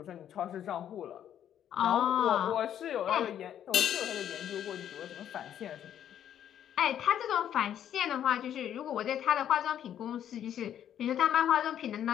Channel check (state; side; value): quieter; right; 10.2 dB